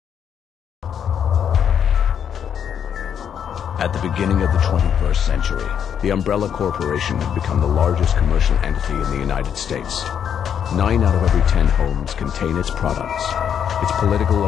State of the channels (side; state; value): right; quieter; 8.4 dB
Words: At the beginning of the 21st century, the Umbrella Corporation had become the largest commercial entity in the United States. 9 out of every 10 homes contain its products. Its political